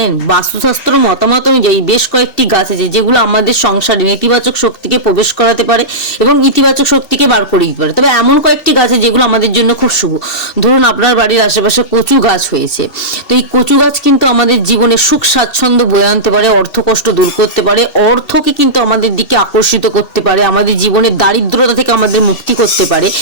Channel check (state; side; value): late; right; 2.7 ms